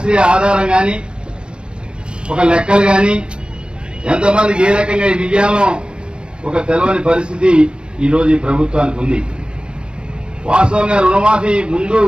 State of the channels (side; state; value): left; late; 0.052 ms